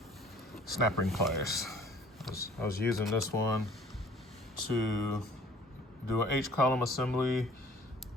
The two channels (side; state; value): both; normal; correlation 0.52